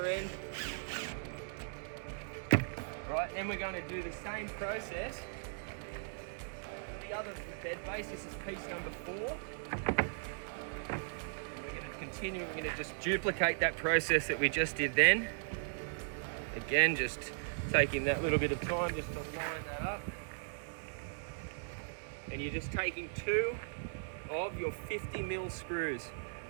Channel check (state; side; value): silent; left; digital silence